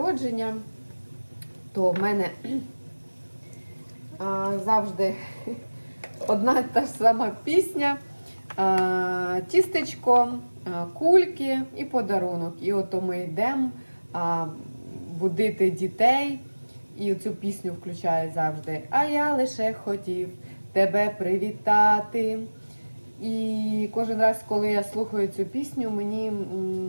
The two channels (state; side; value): inverted; both; correlation -1.00